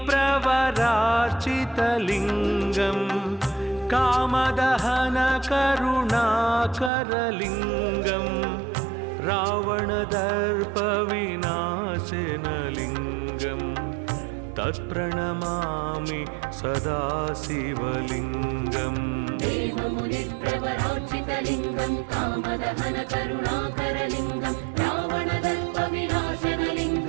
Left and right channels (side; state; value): left; drops out; at 6.9 s